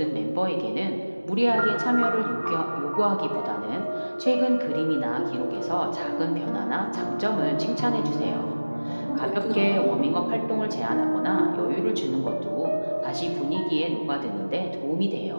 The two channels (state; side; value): inverted; both; correlation -1.00